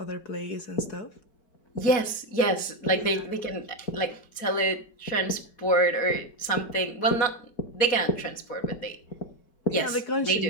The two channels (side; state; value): right; late; 4.2 ms